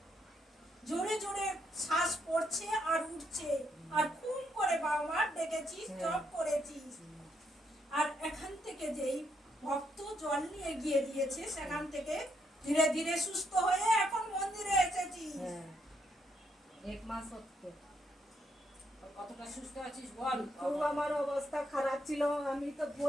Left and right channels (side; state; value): both; normal; correlation 0.76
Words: জোরে জোরে শ্বাস পড়ছে আর উঠছে, আর খুব করে বাবা মার ডেকেছিস, জপ করেছিস। আর এখান থেকে যেই ভক্ত জল নিয়ে গিয়ে দিয়েছে, সেখান থেকে ধীরে ধীরে সুস্থ হয়ে এখন মন্দিরে এসেছিস। এক মাস হচ্ছে। কতটা সুস্থ আছিস বল। খুব আমার অবস্থা খারাপ ছিল, আমি তো